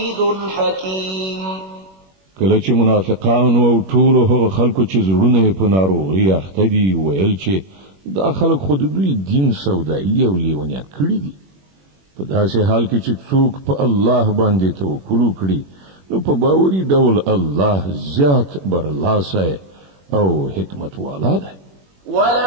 حكيم. کله چې منافقانو او ټولو هغه خلکو چې زړونه یې په ناروغۍ اخته دي ویل چې دا خلک خو د دوی دین سودایي او لیونیان کړي دي. په داسې حال کې چې څوک په الله باندې توکل وکړي نو په باوري ډول الله زیات برلاسی او حکمت والا دی.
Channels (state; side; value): late; left; 21 ms